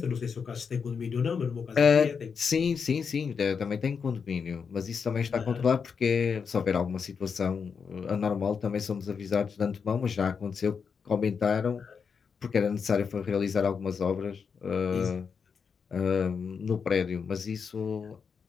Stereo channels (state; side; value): quieter; right; 6.1 dB